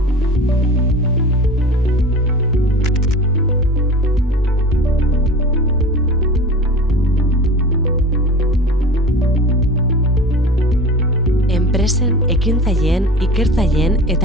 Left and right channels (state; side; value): normal; both; correlation 0.37